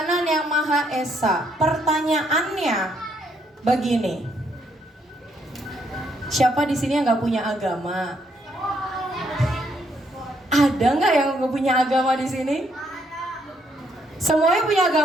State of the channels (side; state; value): both; normal; correlation 0.73